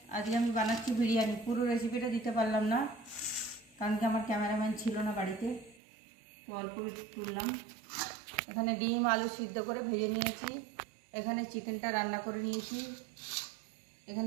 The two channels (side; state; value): left; drops out; at 5.8 s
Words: আজকে আমি বানাচ্ছি বিরিয়ানি। পুরো রেসিপিটা দিতে পারলাম না কারণ কি আমার ক্যামেরাম্যান ছিল না বাড়িতে, তো অল্প তুললাম। এখানে ডিম আলু সিদ্ধ করে ভেজে নিয়েছি, এখানে চিকেনটা রান্না করে নিয়েছি,